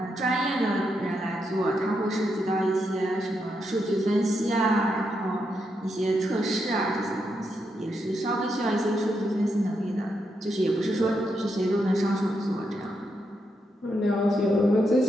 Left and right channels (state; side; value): normal; both; correlation 0.82